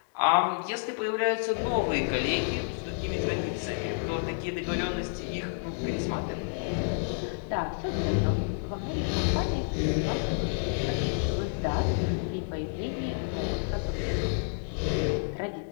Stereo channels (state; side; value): silent; right; digital silence